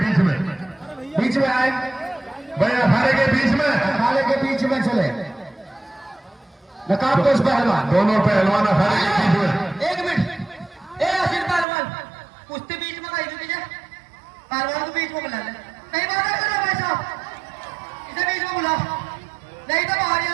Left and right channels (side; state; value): left; drops out; at 11.7 s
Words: में, बीच में आए भैया अखाड़े के बीच में, अखाड़े के बीच में चले। नकाबपोश पहलवान, दोनों पहलवान अखाड़े के बीच में। एक मिनट, ए आसिर पहलवान, कुश्ती बीच में कहीं भी पहलवान को बीच में बुला ले। कहीं बात कर रहे भाई साहब, इसे बीच में बुला, नहीं तो बाहर ही